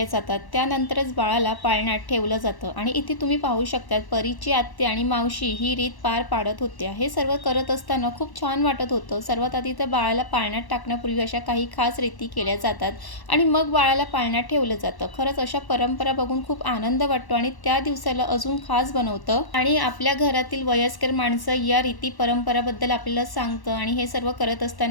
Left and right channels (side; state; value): right; late; 1.1 ms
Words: जातात, त्यानंतरच बाळाला पाळण्यात ठेवलं जातं. आणि इथे तुम्ही पाहू शकता परीची आत्या आणि मावशी ही रीत पार पाडत होत्या. हे सर्व करत असताना खूप छान वाटत होतं. सर्वात आधी तर बाळाला पाळण्यात टाकण्यापूर्वी अशा काही खास रीती केल्या जातात आणि मग बाळाला पाळण्यात ठेवलं जातं. खरंच अशा परंपरा बघून खूप आनंद वाटतो आणि त्या दिवसाला अजून खास बनवतं. आणि आपल्या घरातील वयस्कर माणसं या रीती परंपराबद्दल आपल्याला सांगतं आणि हे सर्व करत